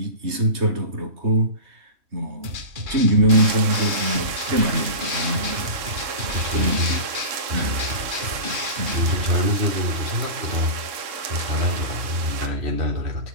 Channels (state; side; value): late; left; 3.1 ms